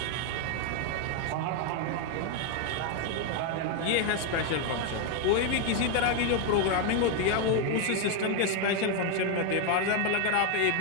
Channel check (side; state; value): both; different; correlation 0.01